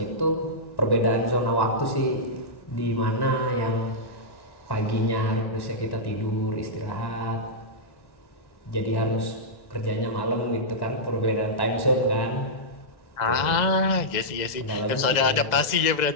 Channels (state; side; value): late; right; 2.0 ms